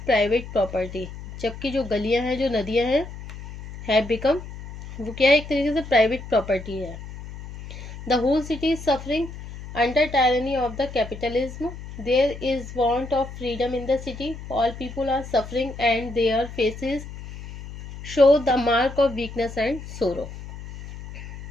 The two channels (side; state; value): left; noise; hum, 12 dB below the sound